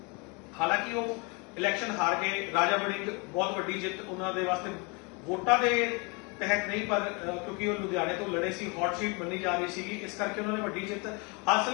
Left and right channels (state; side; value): quieter; right; 30.9 dB